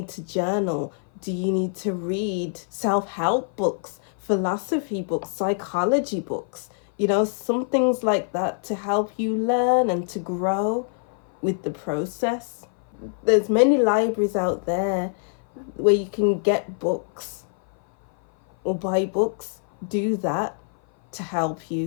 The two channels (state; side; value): silent; right; 56 dB below the other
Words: to journal? Do you need to read self-help books, philosophy books, psychology books? You know, some things like that to help you learn and to grow with the process. There's many libraries out there where you can get books or buy books. Do that to help